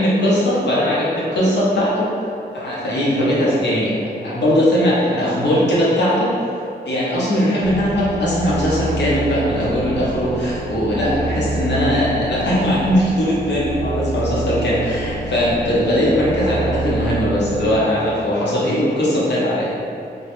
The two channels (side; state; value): both; normal; correlation 0.60